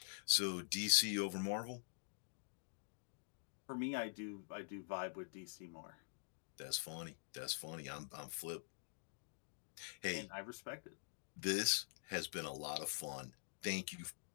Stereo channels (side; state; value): right; silent; digital silence